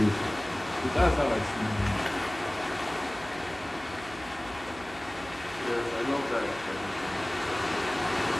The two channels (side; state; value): right; noise; hum, 18 dB below the sound